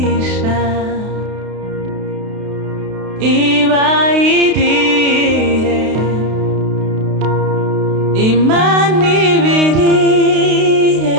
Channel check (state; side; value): late; left; 32 ms